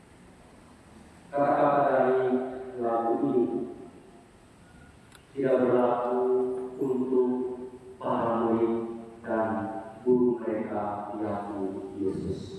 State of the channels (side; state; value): both; identical; correlation 1.00